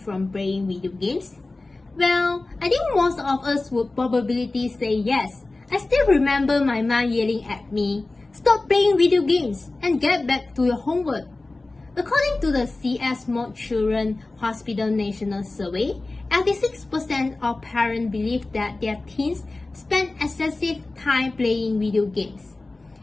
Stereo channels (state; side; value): quieter; right; 3.2 dB